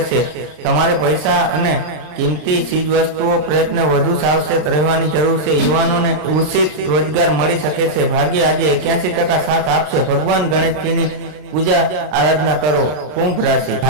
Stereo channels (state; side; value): late; left; 33 ms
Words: છે. તમારે પૈસા અને કિંમતી ચીજવસ્તુઓ પ્રયત્ન વધુ સાવચેત રહેવાની જરૂર છે. યુવાનોને ઉચિત રોજગાર મળી શકે છે. ભાગ્ય આજે 81% સાથ આપશે. ભગવાન ગણેશજીની પૂજા આરાધના કરો. કુંભ રાશિ,